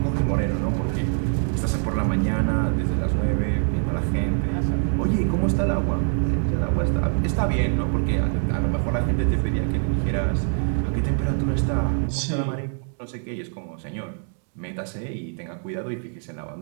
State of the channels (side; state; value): left; silent; 57 dB below the other